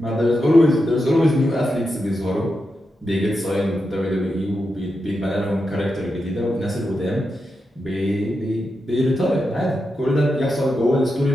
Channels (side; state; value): both; normal; correlation 0.87